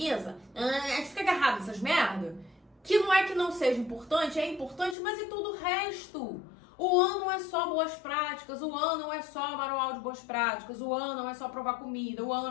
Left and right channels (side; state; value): right; drops out; at 5.0 s